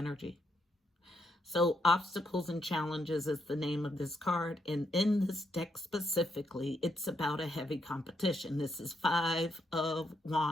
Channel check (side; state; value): both; normal; correlation 0.79